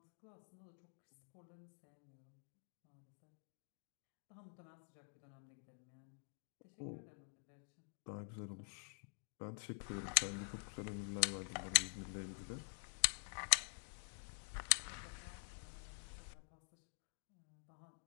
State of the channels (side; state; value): right; silent; digital silence